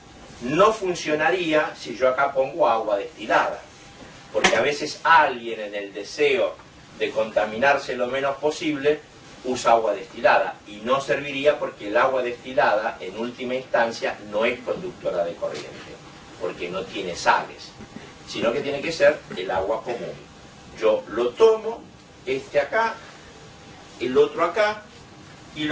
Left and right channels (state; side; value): identical; both; correlation 1.00